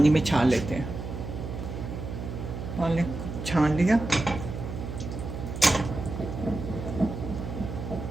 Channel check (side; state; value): right; noise; hum, 7 dB below the sound